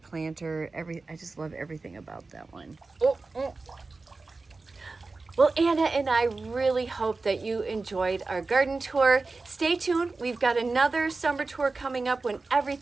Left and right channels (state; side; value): quieter; left; 3.7 dB